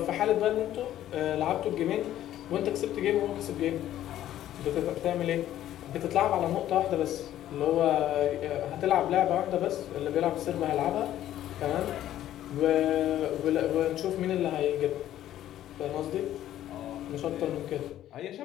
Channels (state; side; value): quieter; right; 12.5 dB